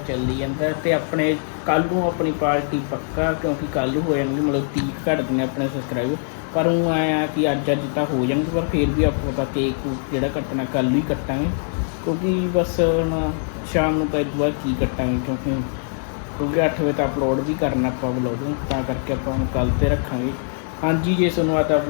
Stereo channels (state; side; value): silent; right; digital silence